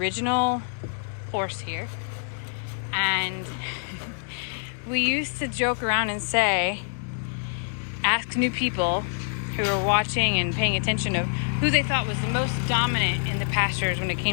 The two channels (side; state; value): right; silent; digital silence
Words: horse here, and we used to joke around and say, ask new people who were watching and paying attention of who they thought was the most dominant in the pastures when it